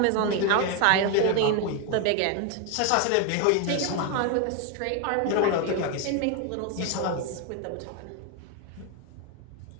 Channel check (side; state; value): both; different; correlation 0.01